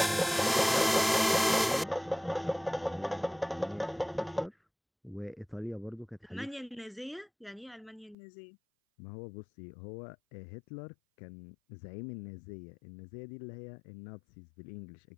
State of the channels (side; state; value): right; drops out; at 8.2 s